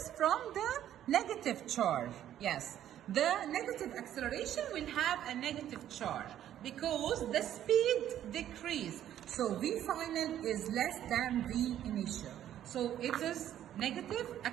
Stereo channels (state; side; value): quieter; left; 11.3 dB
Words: From the negative charge. Yes, the negative acceleration will have a negative charge because the speed decrease. So V final is less than V initial. So it is negative